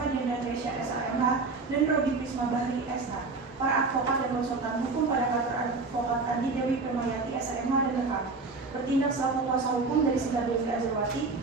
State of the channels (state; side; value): quieter; left; 3.9 dB